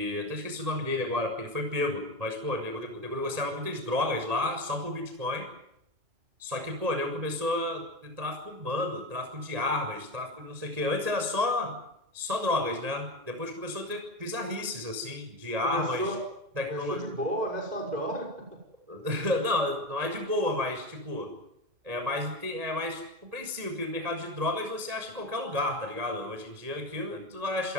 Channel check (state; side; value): late; left; 1.9 ms